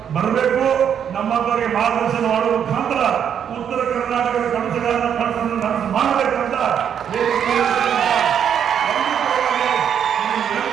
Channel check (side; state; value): left; quieter; 8.5 dB